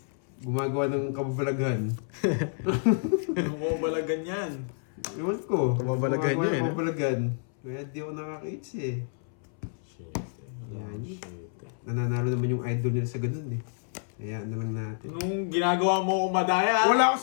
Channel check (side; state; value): right; silent; 59 dB below the other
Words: gumagawa ng kababalaghan. Bumabalagan yan. Ewan ko. Kababalaghan Gumagawa niya, ng eh, no? kababalaghan. Kaya di ako nakaka-eat eh. Shit. Yan. Nananalo naman yung idol nila sa ganun eh. Kaya na lang natin. Nung ginagawa mo ko madaya. Wala ako